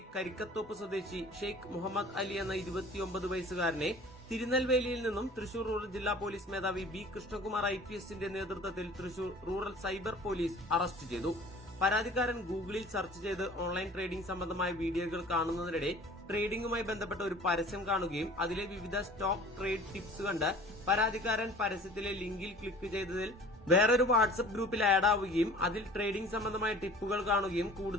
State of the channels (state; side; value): normal; both; correlation 0.46